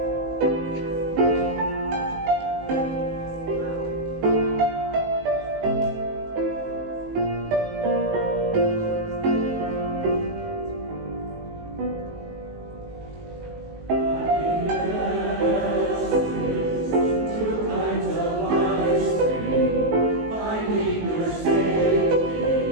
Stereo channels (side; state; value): left; late; 19 ms